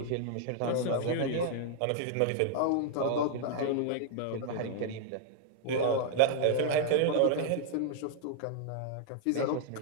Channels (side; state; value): both; different; correlation -0.01